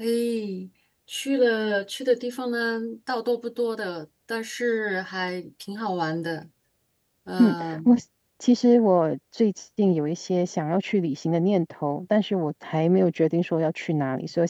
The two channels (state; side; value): identical; both; correlation 1.00